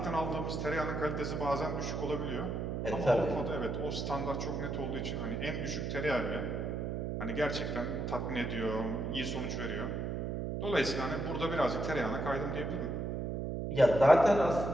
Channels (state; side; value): noise; right; hum, 2 dB below the sound